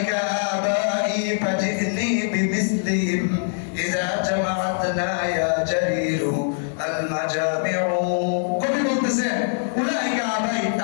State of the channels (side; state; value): right; silent; digital silence